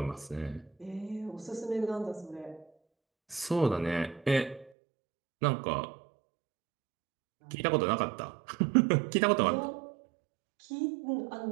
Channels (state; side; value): drops out; left; at 4.7 s